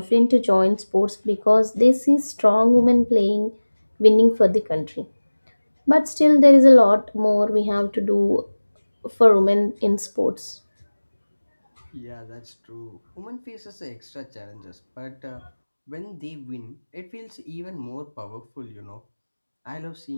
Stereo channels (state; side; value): inverted; both; correlation -1.00